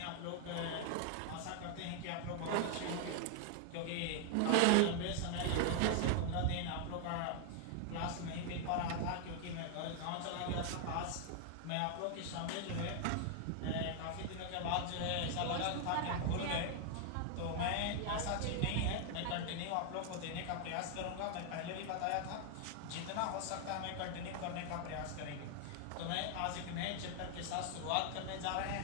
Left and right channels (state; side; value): different; both; correlation 0.00